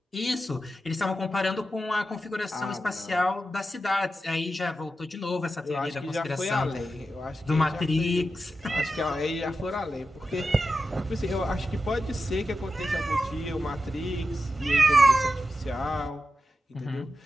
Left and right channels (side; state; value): both; normal; correlation 0.91